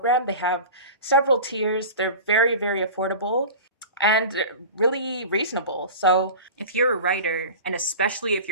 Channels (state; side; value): inverted; both; correlation -0.34